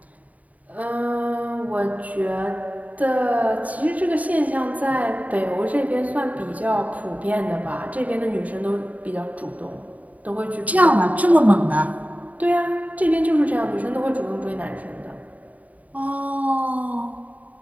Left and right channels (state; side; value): late; left; 0.072 ms